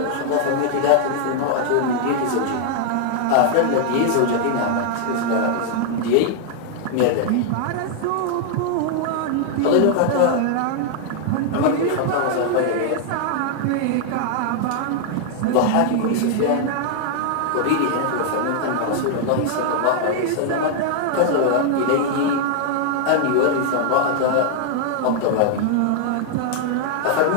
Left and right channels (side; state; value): both; different; correlation 0.00